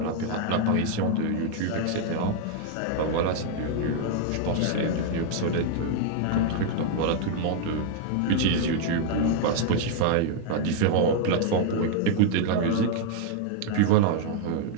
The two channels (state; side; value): different; both; correlation 0.00